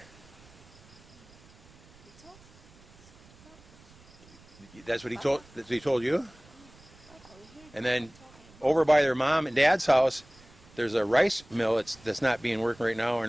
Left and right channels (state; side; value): noise; right; rumble, 25 dB below the sound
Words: He talked. That's what he told. That's what he told you. Okay, we heard And then talking. over by their mom and dad's house, there's a rice mill that's not being worked right now, and